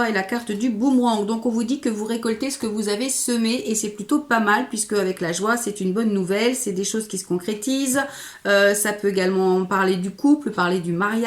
et la carte du boomerang. Donc on vous dit que vous récoltez ce que vous avez semé et c'est plutôt pas mal puisque avec la joie, c'est une bonne nouvelle. C'est des choses qui se concrétisent. Ça peut également parler du couple, parler du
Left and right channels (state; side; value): identical; both; correlation 1.00